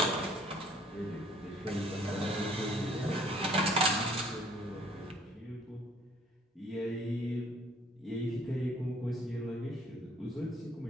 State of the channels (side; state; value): both; normal; correlation 0.58